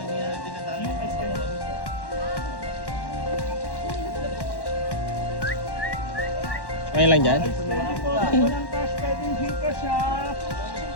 Okay lang dyan. Pwede po, pag walang cash, pwedeng Gcash ha.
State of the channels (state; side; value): late; right; 1.1 ms